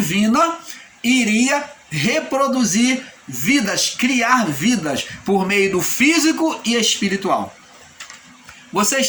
iria reproduzir vidas, criar vidas por meio do físico e espiritual. Você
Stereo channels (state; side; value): identical; both; correlation 1.00